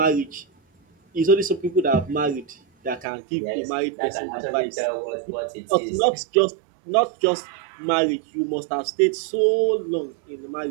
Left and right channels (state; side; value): drops out; left; at 3.1 s